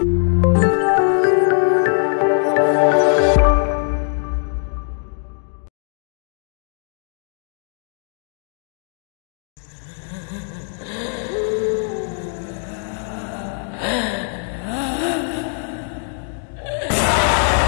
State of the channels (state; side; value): silent; right; 59 dB below the other